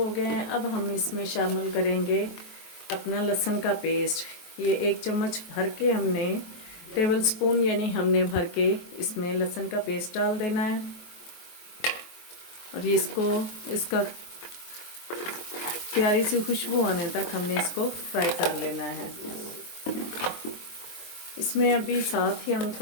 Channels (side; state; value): right; late; 23 ms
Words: गए हैं। अब हम इसमें शामिल करेंगे अपना लहसुन का पेस्ट। ये 1 चम्मच भर के हमने, टेबल स्पून यानी हमने भर के इसमें लहसुन का पेस्ट डाल देना है। और इसका प्यारी सी खुशबू आने तक हमने इसको फ्राई कर लेना है। इसमें अभी साथ ही हम